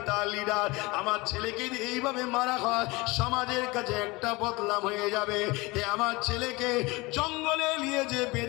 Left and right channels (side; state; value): right; quieter; 23.6 dB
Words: লিডার, আমার ছেলেকে এইভাবে মারা হয় সমাজের কাছে একটা বদনাম হয়ে যাবে। আমার ছেলেকে জঙ্গলে নিয়ে যে